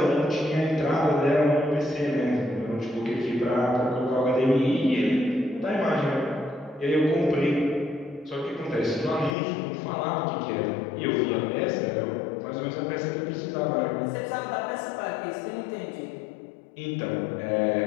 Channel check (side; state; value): right; drops out; at 9.3 s